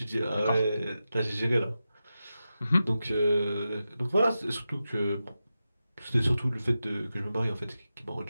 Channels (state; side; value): inverted; both; correlation -0.92